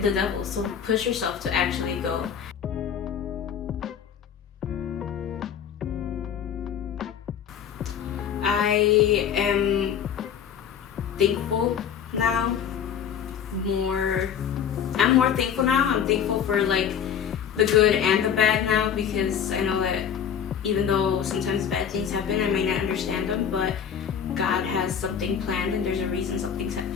devil. So push yourself to actually go. I am thankful now. I'm more thankful now. I'm thankful for the good and the bad now, because I know that even though sometimes bad things happen, I may not understand them, but God has something planned, and there's a reason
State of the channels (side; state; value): right; quieter; 8.2 dB